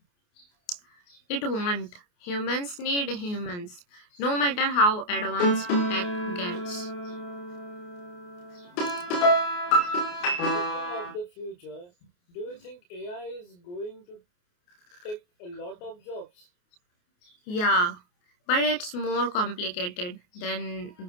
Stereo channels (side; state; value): right; late; 28 ms